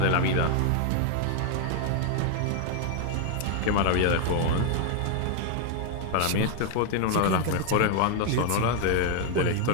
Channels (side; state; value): both; different; correlation 0.00